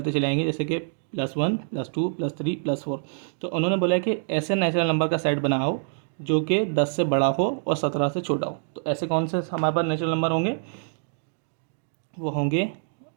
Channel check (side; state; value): left; silent; digital silence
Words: चले आएंगे, जैसे कि +1 +2 +3 +4। तो उन्होंने बोला है कि ऐसे नेचुरल नंबर का सेट बनाओ जो कि 10 से बड़ा हो और 17 से छोटा हो। तो ऐसे कौन से हमारे पास नेचुरल नंबर होंगे? वो होंगे